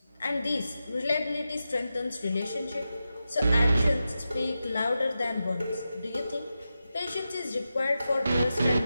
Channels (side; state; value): both; inverted; correlation -0.91